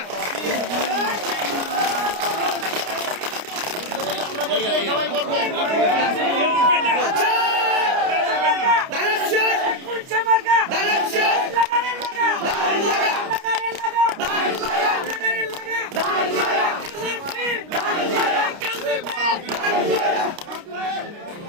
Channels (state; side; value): late; left; 29 ms